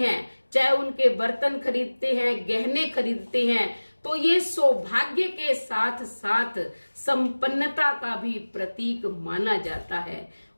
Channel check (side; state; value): both; inverted; correlation -1.00